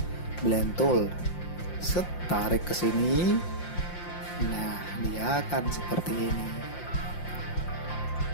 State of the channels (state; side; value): late; right; 5.7 ms